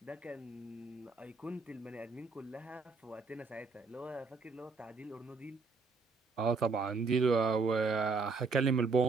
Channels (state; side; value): quieter; left; 4.3 dB